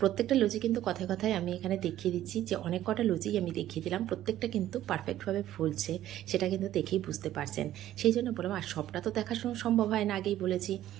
প্রত্যেকটা লুচি কিন্তু কথায় কথায় আমি এখানে দেখিয়ে দিচ্ছি যে অনেক কটা লুচি আমি দেখিয়ে দিলাম, প্রত্যেকটা কিন্তু পারফেক্টভাবে ফুলছে, সেটা কিন্তু দেখেই বুঝতে পারছেন। সেই জন্য বললাম, আর সবটা তো দেখাশোনা সম্ভব হয় না, আগেই বলেছি।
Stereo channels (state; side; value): quieter; left; 13.1 dB